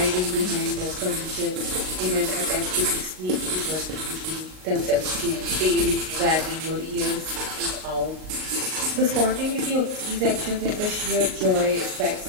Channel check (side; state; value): left; late; 38 ms